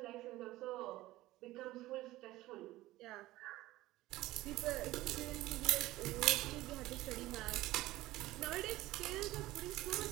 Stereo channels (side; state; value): left; quieter; 17.2 dB